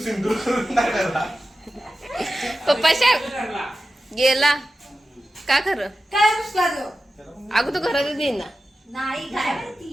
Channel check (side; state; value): both; normal; correlation 0.93